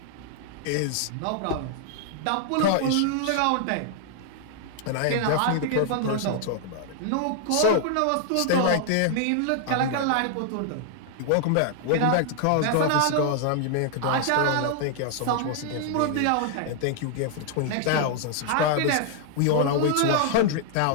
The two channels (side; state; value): both; different; correlation 0.00